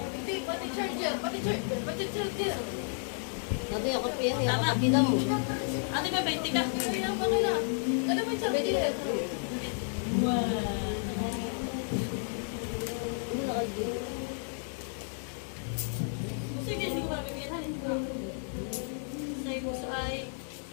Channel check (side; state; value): right; silent; 56 dB below the other